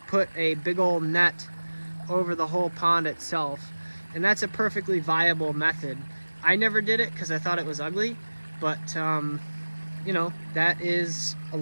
put a big old net over the whole pond itself. And that's a perfectly viable method. I never did it because I thought it was ugly, but you know, that is a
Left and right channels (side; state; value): both; inverted; correlation -1.00